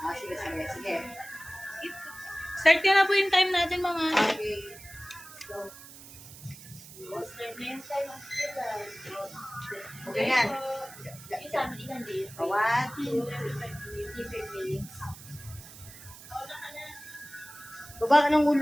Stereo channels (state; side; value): noise; right; hiss, 17 dB below the sound